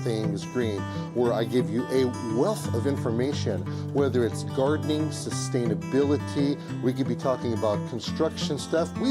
Things Green, where I give you a wealth of information, whether it's gardening, sustainability, we could be talking about construction stuff,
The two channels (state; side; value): identical; both; correlation 1.00